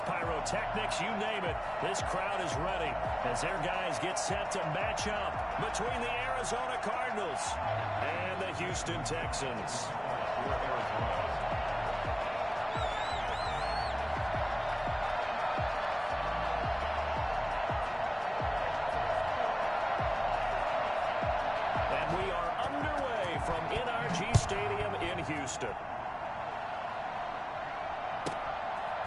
pyrotechnics, you name it. This crowd is ready as their guys get set to match up between the Arizona Cardinals and the Houston Texans. Houston.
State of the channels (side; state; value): both; identical; correlation 1.00